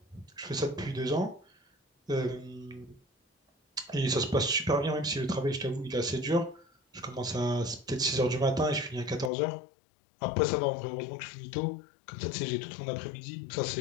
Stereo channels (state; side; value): drops out; right; at 9.3 s